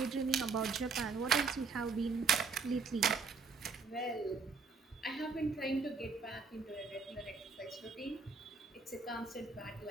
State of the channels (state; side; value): quieter; left; 4.8 dB